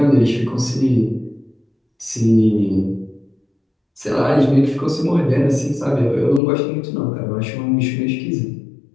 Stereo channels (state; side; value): drops out; right; at 6.4 s